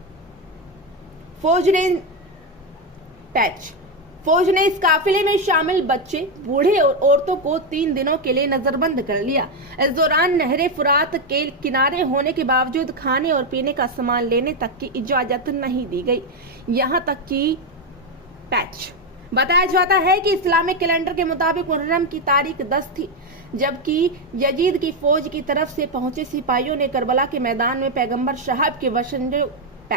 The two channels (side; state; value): both; normal; correlation 0.07